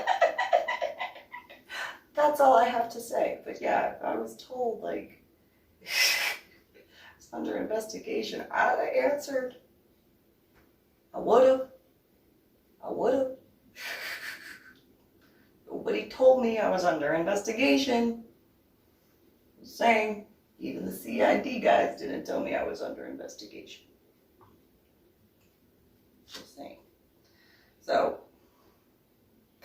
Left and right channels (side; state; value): both; identical; correlation 1.00